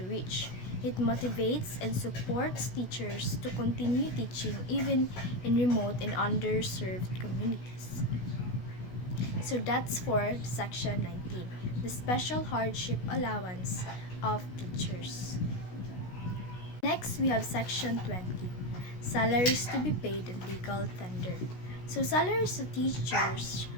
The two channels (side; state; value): right; late; 16 ms